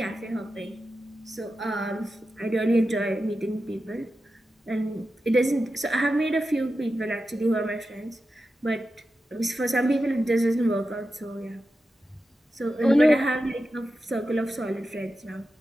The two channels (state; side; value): normal; both; correlation 0.91